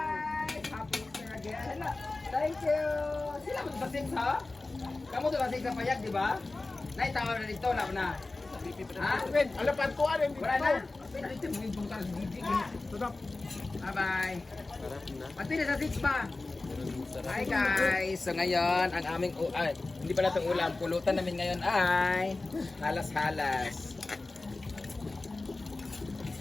Happy Easter again. Hello. Thank you. Sila magbasig sa? Kamu to basig sa payag, di ba? Naitawa na dito na na. Ha? Ala pantuan yung Wala na. Wait, dito mo yung bangkal sa gigi. Bye-bye. Pati na sa 6 pa. Hi guys! So ngayon, ang aming hindi pala itong ulam, pulutan namin ngayon ay halas-halas.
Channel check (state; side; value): quieter; right; 3.3 dB